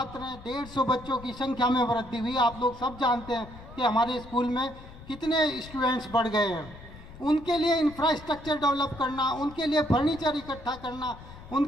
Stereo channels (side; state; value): left; noise; rumble, 17 dB below the sound